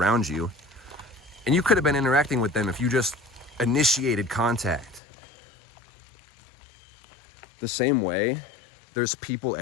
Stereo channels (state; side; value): drops out; right; at 5.0 s